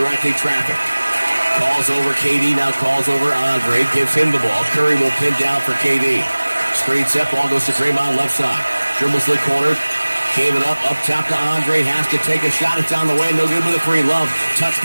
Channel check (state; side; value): inverted; both; correlation -1.00